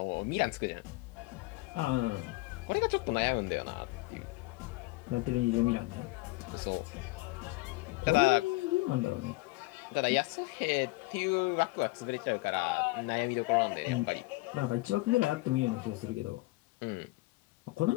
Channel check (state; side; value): quieter; right; 22.1 dB